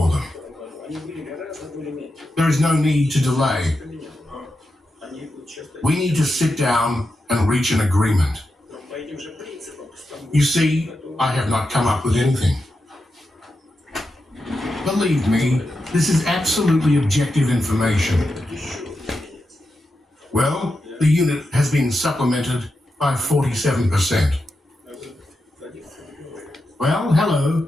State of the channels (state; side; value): normal; both; correlation 0.88